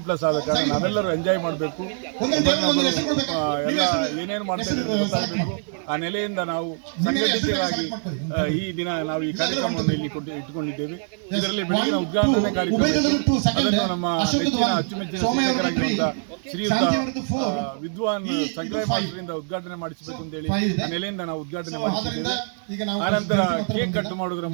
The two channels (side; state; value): left; silent; 63 dB below the other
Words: ಆದ ಕಾರಣ ನಾವೆಲ್ಲರೂ ಎಂಜಾಯ್ ಮಾಡಬೇಕು, ಎಲ್ಲ ಏನೇನು ಮಾಡ್ತಾ ಇದ್ದೀವಿ ಗೊತ್ತಾಗಬೇಕು. ಆ ನೆಲೆಯಿಂದ ನಾವು ಸಂಘಟಿತರಾಗಿ ಈ ದಿನ ನಾವು ಈ ಕಾರ್ಯಕ್ರಮವನ್ನು ಇಲ್ಲಿ ಇಟ್ಟುಕೊಂಡಿದ್ದೇವೆ. ಇದರಲ್ಲಿ ಬೆಳಗಿನ ಉದ್ಘಾಟನೆ ಕಾರ್ಯಕ್ರಮ ಅದನ್ನು ನಮ್ಮ ನೆಚ್ಚಿನ ಅಚ್ಚುಮೆಚ್ಚಿನ ಶಿಕ್ಷಕರಾಗಿರುವಂತಹ ಶ್ರೀಯುತ ವಿದ್ವಾನ್ ಸಂಗ್ರಹ ಮಾಸ್ಟರಿಂದ ಉದ್ಘಾಟನೆ ಮಾಡಿಸಬೇಕು ಅಂತ ಹೇಳಿ ಆ ನೆಲೆಯಿಂದ ನಾವು ಉದ್ಘಾಟನೆ ಮಾಡಿಸಿದ್ದೇವೆ. ಆನಂತರ ಕೇಕ್ ಕಟ್ ಮಾಡೋದ್ರ